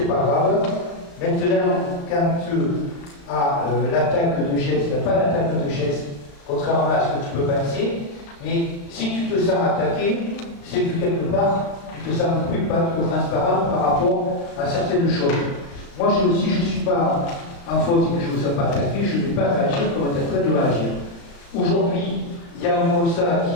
pas grave. Maintenant, quand à l'attaque de geste, il n'y a pas d'attaque de geste, contrairement à ce que tu peux penser, mais si tu te sens attaqué, c'est que quelque part, tu te sens plus pas trop transparent par rapport à certaines choses. Moi, si je ne suis pas en faute et que je ne me sens pas attaqué, je ne vais pas réagir comme on est en train de réagir. Aujourd'hui, il y a un constat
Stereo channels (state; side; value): late; right; 35 ms